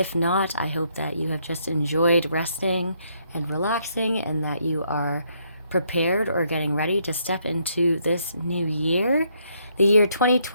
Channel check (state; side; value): inverted; both; correlation -0.72